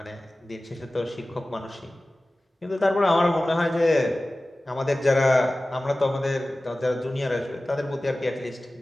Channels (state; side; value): normal; both; correlation 0.97